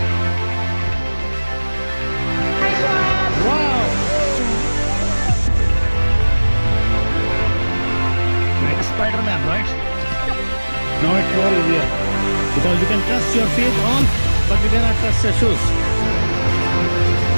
Wow! Like a Spider-Man, right? Now it's more easier. Because you can trust your feet on, but you cannot trust your shoes.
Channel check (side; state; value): both; inverted; correlation -1.00